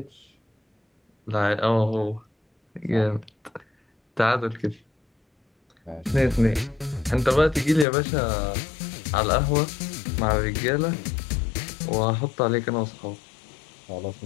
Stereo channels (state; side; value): drops out; right; at 7.9 s